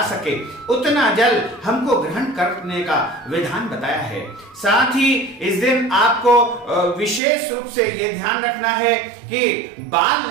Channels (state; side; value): drops out; left; at 7.2 s